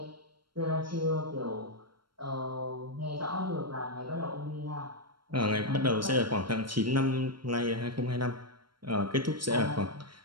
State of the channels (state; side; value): late; left; 0.73 ms